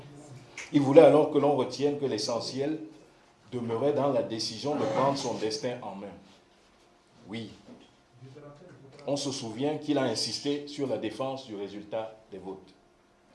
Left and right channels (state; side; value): identical; both; correlation 1.00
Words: Il voulait alors que l'on retienne que l'essentiel demeurait dans la décision de prendre son destin en main. Oui, on se souvient qu'il a insisté sur la défense du résultat des votes.